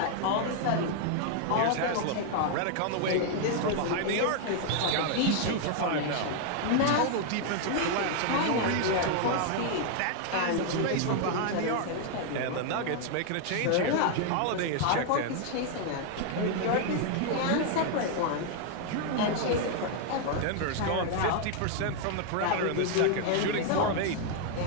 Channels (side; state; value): both; different; correlation 0.00